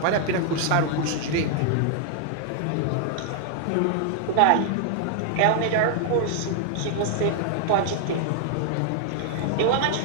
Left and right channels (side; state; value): both; different; correlation 0.00